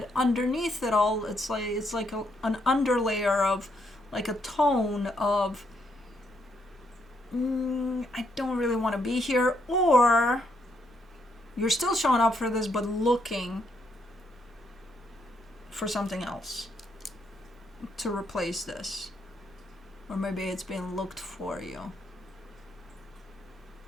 Underneath it all, it's like an underlayer of, like a tone of, I don't really want to be here, or you're still showing up for this but looking for something else to replace this, or maybe it's being looked for you.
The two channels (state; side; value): normal; both; correlation 0.75